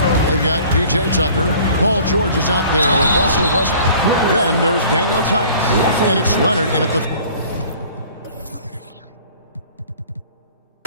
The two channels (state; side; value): inverted; both; correlation -0.49